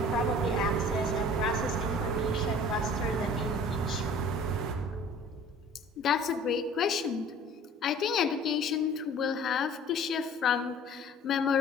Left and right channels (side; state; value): both; normal; correlation 0.48